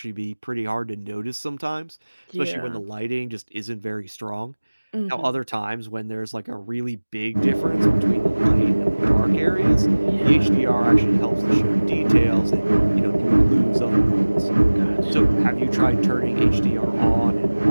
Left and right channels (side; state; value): both; inverted; correlation -1.00